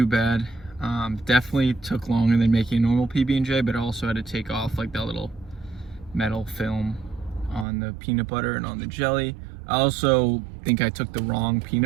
bad. Definitely took longer than making a normal PB&J, but I also had to take off like that little metal film on the peanut butter and on the jelly. I also think I took the wrong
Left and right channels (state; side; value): drops out; left; at 7.7 s